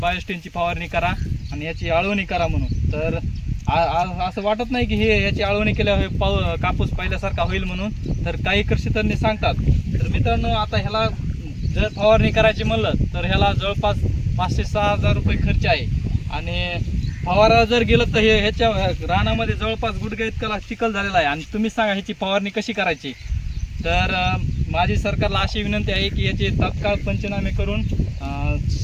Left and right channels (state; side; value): identical; both; correlation 1.00